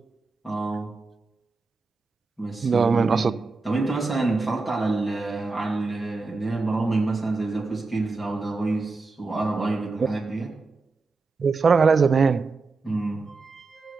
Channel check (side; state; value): left; quieter; 3.9 dB